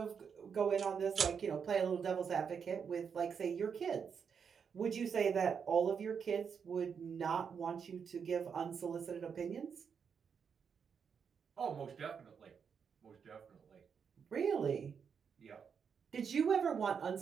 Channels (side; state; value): left; quieter; 6.7 dB